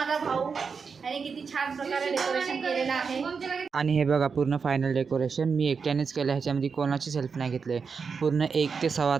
भाऊ आणि किती छान प्रकारे डेकोरेशन केलेलं आहे. आणि हे बघा पूर्ण फायनल डेकोरेशन मी एकट्यानेच केलं. ह्याच्यामध्ये कोणाचीच हेल्प नाही घेतली. पूर्ण 1 ते सव्वा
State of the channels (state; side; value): quieter; left; 5.5 dB